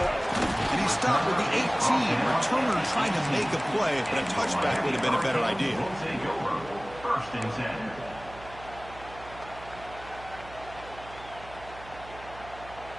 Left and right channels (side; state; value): right; noise; hum, 18 dB below the sound